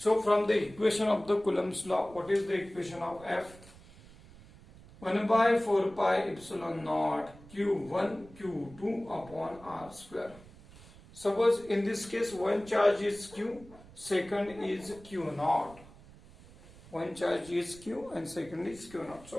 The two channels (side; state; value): right; noise; rumble, 21 dB below the sound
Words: from the equation of the Coulomb's law, what is the equation of F? 1 by 4 pi epsilon naught Q1 Q2 upon R square. Suppose in this case one charge is Q, second is Q naught. One charge is Q and second is Q naught.